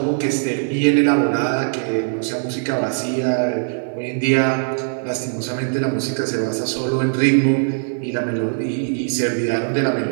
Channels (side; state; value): left; silent; 56 dB below the other